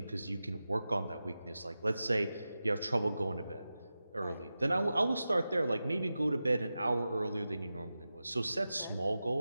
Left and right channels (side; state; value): both; inverted; correlation -0.93